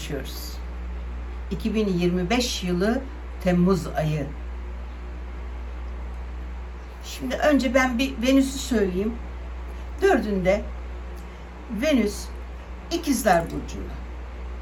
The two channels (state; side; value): identical; both; correlation 1.00